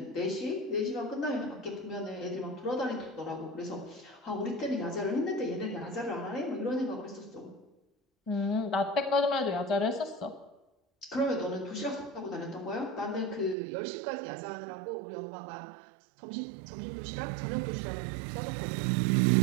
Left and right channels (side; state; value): left; drops out; at 13.6 s